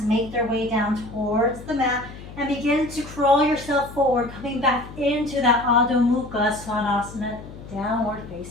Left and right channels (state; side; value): noise; left; hum, 15 dB below the sound